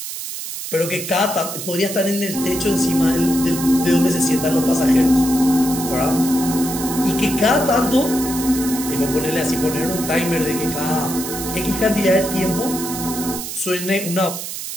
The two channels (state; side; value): noise; right; hiss, 7 dB below the sound